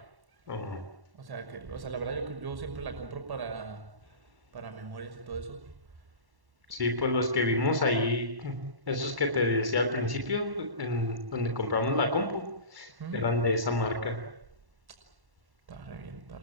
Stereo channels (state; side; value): late; left; 1.1 ms